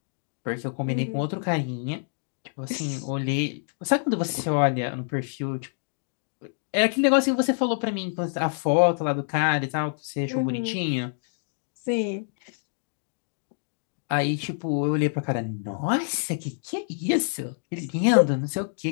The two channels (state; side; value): silent; right; digital silence